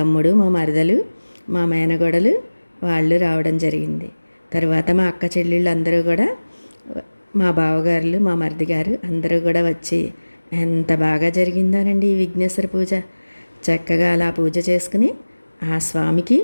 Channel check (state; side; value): inverted; both; correlation -1.00